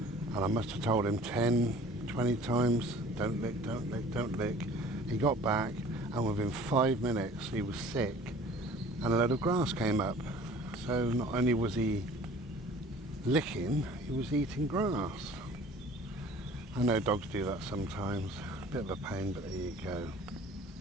I must have told him 10, 20 times, don't lick, don't lick, don't lick. He got back, and within 5 minutes he was sick, and a load of grass came up. So not only was he licking, he was eating grass. I know dogs do that sometimes, a bit of a pain, but there you go.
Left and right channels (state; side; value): normal; both; correlation 0.48